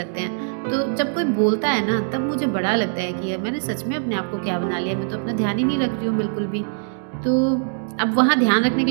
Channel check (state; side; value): silent; left; digital silence